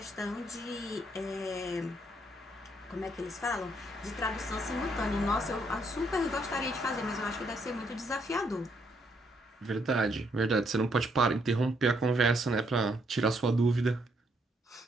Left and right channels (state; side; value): normal; both; correlation 0.73